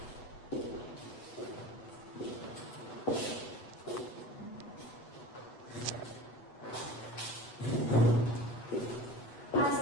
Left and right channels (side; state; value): right; late; 8.1 ms